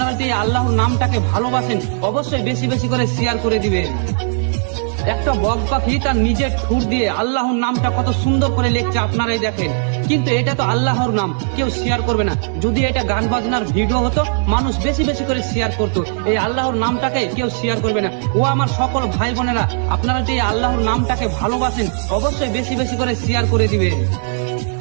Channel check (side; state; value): left; silent; digital silence